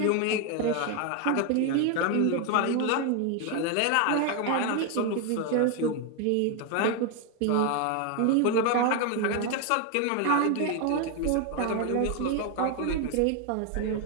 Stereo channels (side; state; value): both; different; correlation 0.01